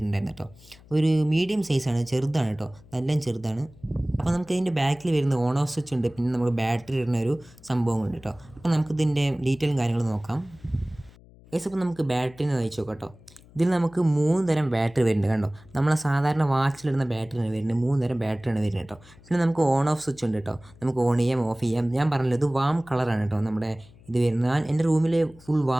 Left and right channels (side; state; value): left; noise; hum, 24 dB below the sound